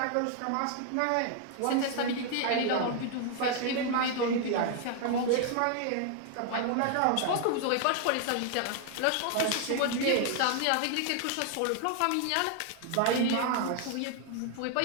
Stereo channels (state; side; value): different; both; correlation 0.00